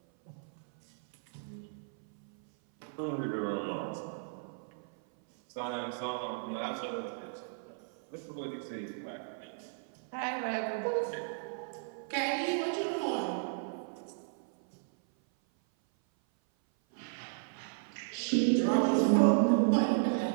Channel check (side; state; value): left; silent; 55 dB below the other